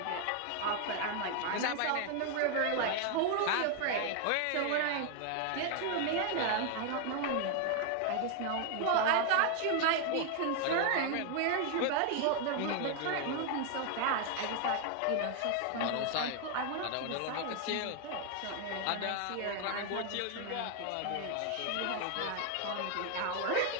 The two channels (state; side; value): different; both; correlation 0.01